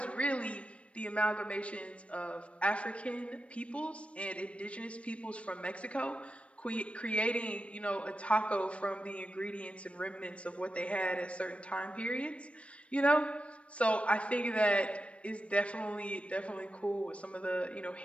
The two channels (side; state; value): right; late; 0.062 ms